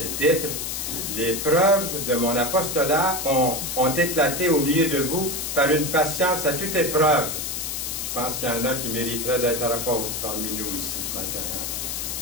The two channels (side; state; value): left; noise; hiss, 4 dB below the sound